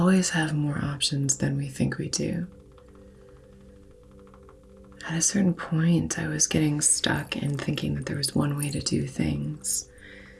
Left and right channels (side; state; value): both; identical; correlation 1.00